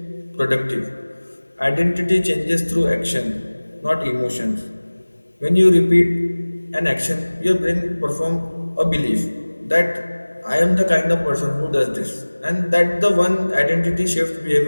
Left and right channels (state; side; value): inverted; both; correlation -1.00